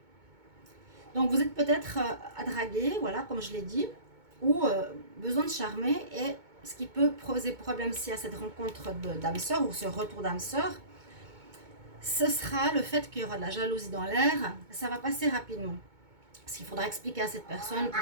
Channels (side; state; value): left; late; 2.2 ms